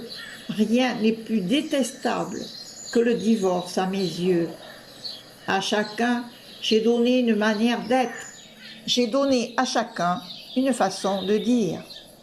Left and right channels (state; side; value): identical; both; correlation 1.00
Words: Rien n'est plus détestable que le divorce à mes yeux. À chacun, j'ai donné une manière d'être. J'ai donné à chacun une façon de dire.